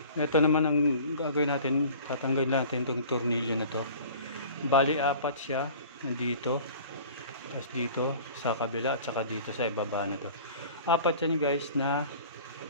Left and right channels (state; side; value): inverted; both; correlation -0.44